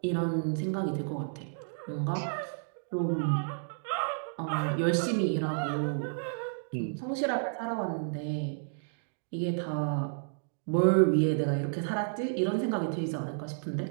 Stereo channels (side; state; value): left; silent; digital silence